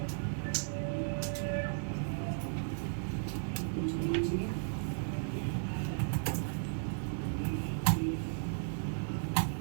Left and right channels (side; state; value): left; silent; digital silence